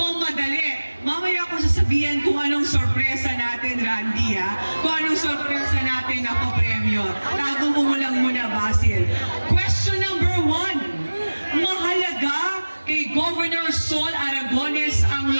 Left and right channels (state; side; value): inverted; both; correlation -1.00